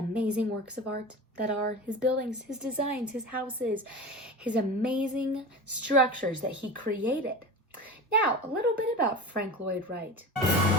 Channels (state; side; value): normal; both; correlation 0.30